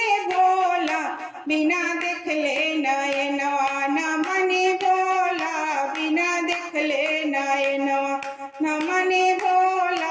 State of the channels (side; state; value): both; identical; correlation 1.00